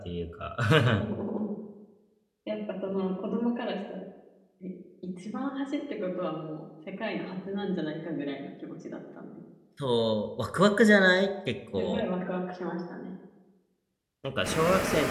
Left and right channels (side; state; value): both; identical; correlation 1.00